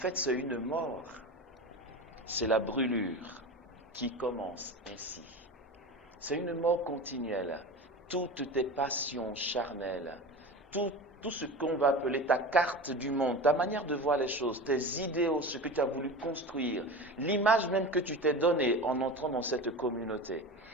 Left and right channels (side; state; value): both; normal; correlation 0.29